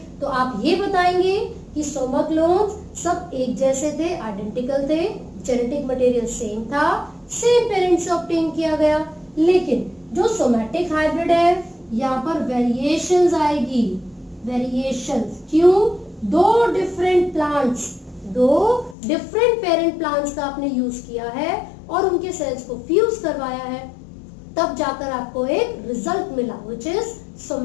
तो आप ये बताएंगे कि सोमा क्लोन्स सब एक जैसे थे, आइडेंटिकल थे, जेनेटिक मटेरियल सेम था, सेम पेरेंट से ऑब्टेन किया गया। लेकिन जो सोमैटिक हाइब्रिड है, यहाँ पर वेरिएशंस आएगी, वेरिएशंस। क्यों, 2 डिफरेंट पेरेंट प्लांट्स का आपने यूज किया है और उनके सेल्स को फ्यूज करवाया है, तब जाकर आपको एक रिजल्ट मिला व्हिच इज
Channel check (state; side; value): drops out; right; at 18.9 s